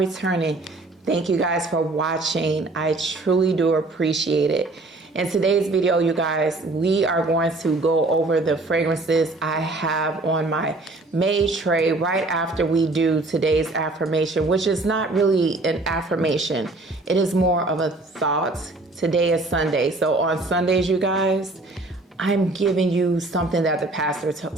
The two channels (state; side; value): quieter; left; 3.0 dB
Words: thank you guys for watching. I truly do appreciate it. In today's video, you guys, we are going to go over the fragrances I have on my made tray right after we do today's affirmation, which is not really an affirmation. It is more of a thought. Today is Sunday. So on Sundays, you guys, I'm giving you something that the pastor